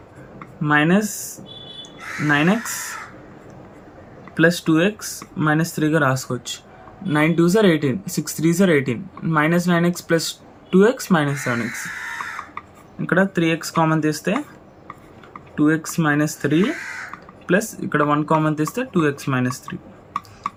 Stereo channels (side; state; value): both; identical; correlation 1.00